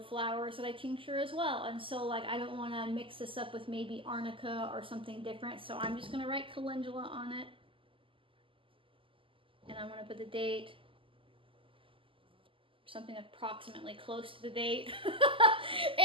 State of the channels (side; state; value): left; late; 0.25 ms